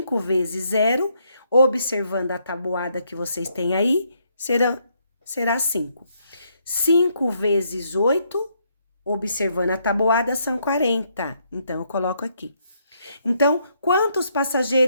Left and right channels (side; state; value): both; inverted; correlation -0.73